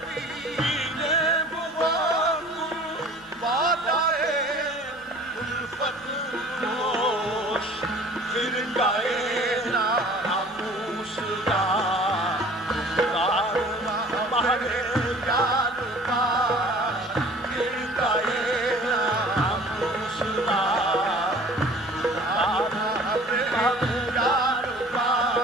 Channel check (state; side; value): normal; both; correlation 0.48